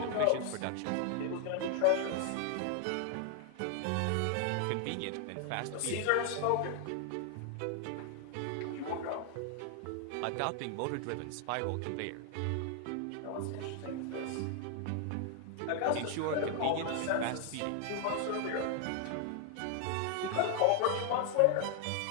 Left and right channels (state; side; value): different; both; correlation 0.00